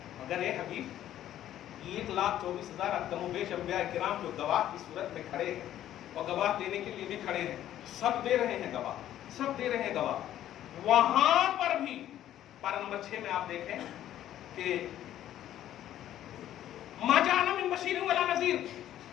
مگر اے حبیب 1,24,000 کم و بیش انبیاء کرام جو گواہ کی صورت میں کھڑے ہیں اور گواہ دینے کے لیے بھی کھڑے ہیں، سب دے رہے ہیں گواہ، سب دے رہے ہیں گواہ. وہاں پر بھی پارہ نمبر 6 میں آپ دیکھیں کہ ما جاءنا من بشیر ولا نذیر،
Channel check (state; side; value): quieter; right; 12.1 dB